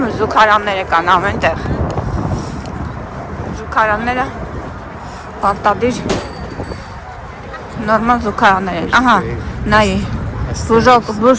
զուգարանները կան ամեն տեղ, զուգարանները պարտադիր նորմալ զուգարաններ են, ահա, նայի,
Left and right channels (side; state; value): both; identical; correlation 1.00